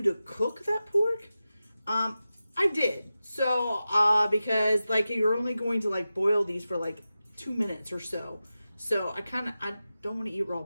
to cook that pork. I did. So, because like you're only going to like boil these for like 2 minutes or so. So I don't want to eat raw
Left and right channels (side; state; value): both; inverted; correlation -0.93